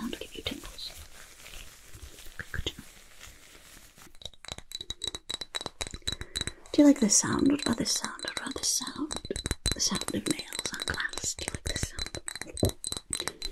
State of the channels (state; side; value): identical; both; correlation 1.00